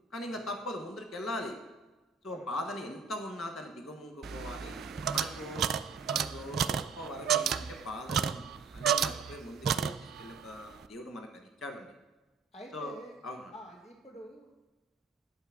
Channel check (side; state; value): left; quieter; 5.1 dB